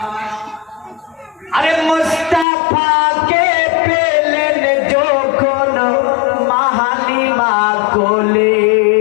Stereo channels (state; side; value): drops out; right; at 2.5 s